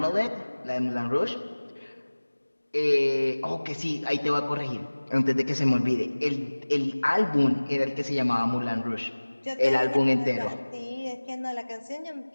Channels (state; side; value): inverted; both; correlation -1.00